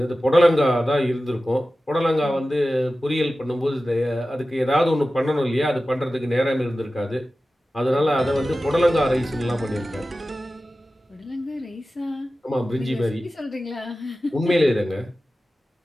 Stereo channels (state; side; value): normal; both; correlation 0.95